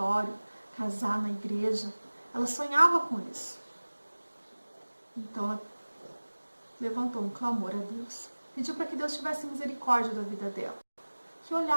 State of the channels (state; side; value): inverted; both; correlation -1.00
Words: casar na igreja. Ela sonhava com isso. Então ela levantou um clamor a Deus, pediu para que Deus tivesse misericórdia da vida dela, que